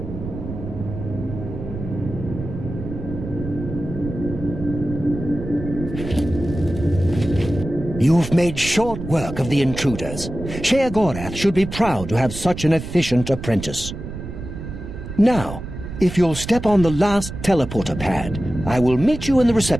You've made short work of the intruders. Sheogorath should be proud to have such an efficient apprentice. Now, if you'll step on the last teleporter pad, I will meet you in the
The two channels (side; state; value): right; noise; rumble, 9 dB below the sound